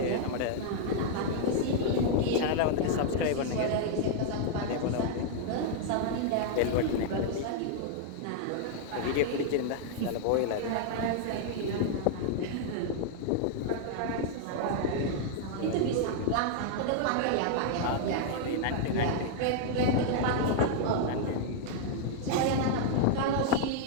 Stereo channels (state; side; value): different; both; correlation -0.01